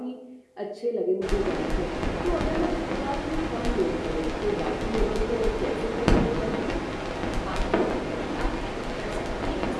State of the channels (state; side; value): identical; both; correlation 1.00